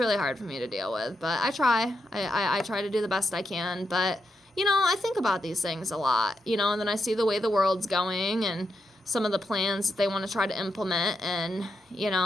hard for me to deal with, but I try. I try to do the best I can, but, you know, I think about these things a lot, you know, and then I see the way the world's going, and some of the plans that they want to try to implement, and, you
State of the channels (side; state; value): both; normal; correlation 0.84